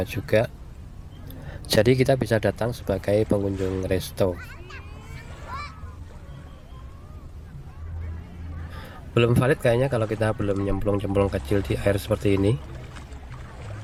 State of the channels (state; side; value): identical; both; correlation 1.00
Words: juga. Jadi kita bisa datang sebagai pengunjung resto. Belum valid kayaknya kalau kita belum nyemplung-nyemplung kecil di air seperti ini,